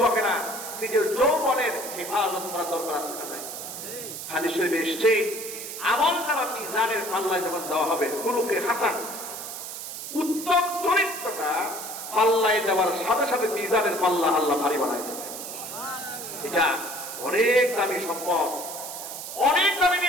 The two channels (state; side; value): noise; right; hiss, 8 dB below the sound